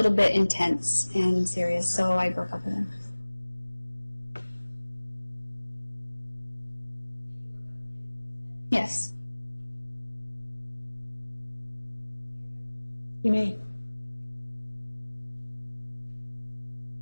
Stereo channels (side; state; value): both; inverted; correlation -1.00